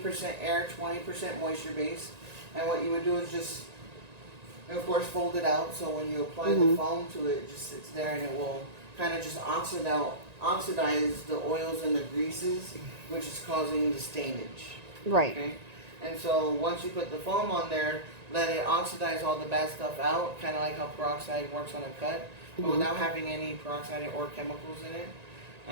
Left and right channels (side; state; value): left; late; 1.9 ms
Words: air, 20% moisture base. And what you would do is just, of course, fold it out. So when you apply the foam to it, it just sits there and it will kind of just oxidize the oils and the greases, which is causing the stainage. Right. Okay? And so once you put the foam on there, let it oxidize all the bad stuff out, kind of like how peroxide works on a cut, but without having any peroxide or chemicals in it.